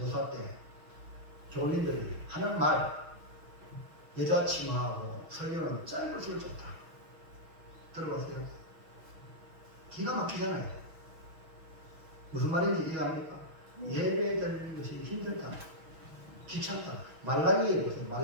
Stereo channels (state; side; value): late; left; 6.2 ms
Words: 때 교인들이 하는 말, 여자 치마하고 설교는 짧을수록 좋다. 들어보세요. 기가 막히잖아요. 무슨 말인지 이해합니까? 예배 드리는 것이 힘들다. 귀찮다. 말라기에 보세요.